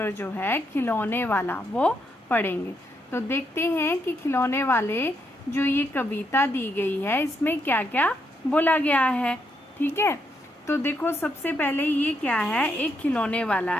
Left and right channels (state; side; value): normal; both; correlation 0.78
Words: जो है खिलौने वाला, वो पढ़ेंगे। तो देखते हैं कि खिलौने वाले जो ये कविता दी गई है, इसमें क्या क्या बोला गया है। ठीक है, तो देखो सबसे पहले ये क्या है, एक खिलौने वाला